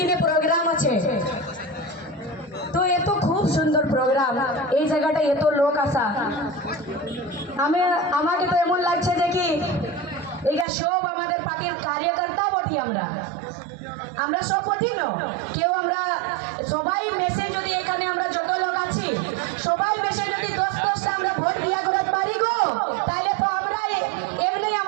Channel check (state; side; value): drops out; left; at 10.7 s